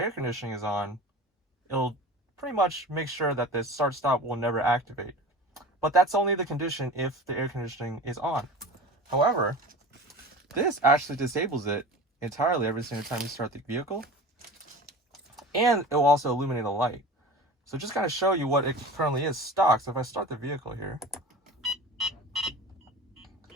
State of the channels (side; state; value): both; normal; correlation 0.36